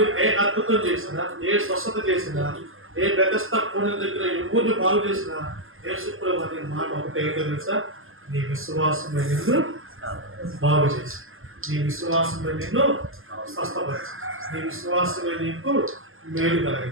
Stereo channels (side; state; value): left; late; 0.60 ms